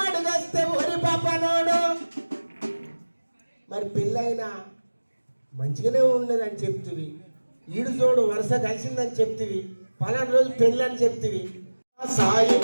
అడుగస్తే ఒరి పాపనోడు. మరి పెళ్ళైనా మంచిగానే ఉండదని చెప్తివి, ఈడు జోడు వరుస కలిసిందని చెప్తివి, పలానా రోజు పెళ్ళి అని చెప్తివి.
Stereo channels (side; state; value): both; inverted; correlation -1.00